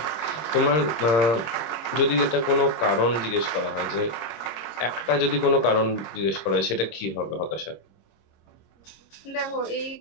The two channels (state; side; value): late; right; 26 ms